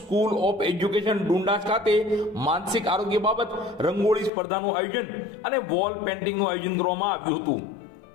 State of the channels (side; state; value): right; drops out; at 4.3 s